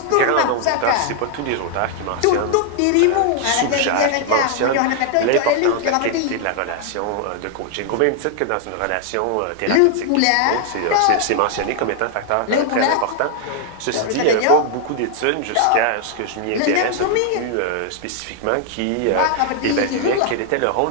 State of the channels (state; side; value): different; both; correlation 0.00